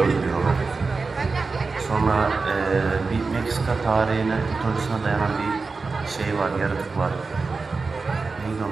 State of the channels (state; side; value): quieter; left; 4.2 dB